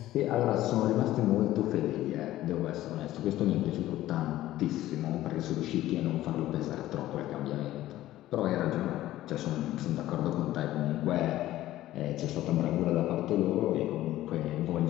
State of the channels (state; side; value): quieter; right; 14.9 dB